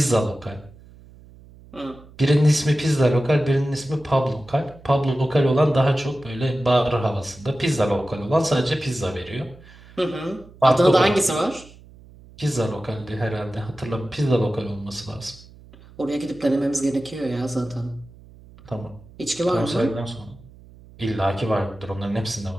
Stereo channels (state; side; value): noise; right; hum, 22 dB below the sound